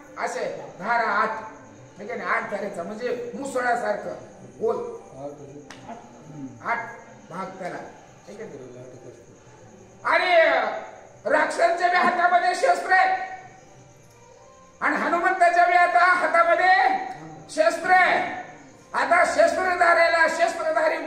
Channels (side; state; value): both; identical; correlation 1.00